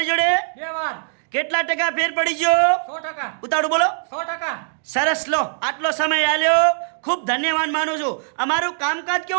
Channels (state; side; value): silent; left; digital silence